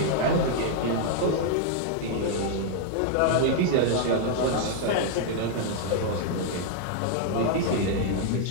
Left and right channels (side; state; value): both; different; correlation -0.01